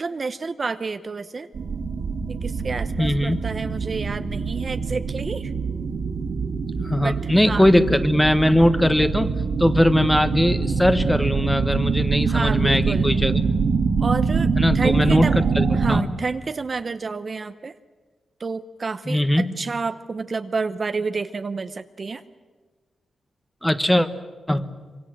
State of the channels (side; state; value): both; normal; correlation 0.92